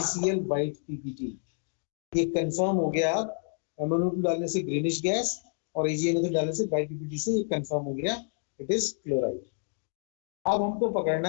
व्हाइट पीपीटी। ये कंफर्म हो गया। अब MnO2 डालने से ग्रीनिश गैस और AgNO3 डालने से व्हाइट पीपीटी से ये कंफर्म हो गया, इट इज क्लोराइड। अब हमको पकड़ना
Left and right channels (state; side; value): silent; right; digital silence